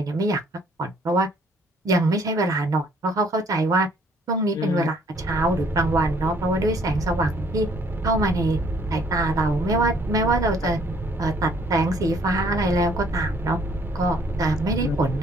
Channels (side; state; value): both; normal; correlation 0.61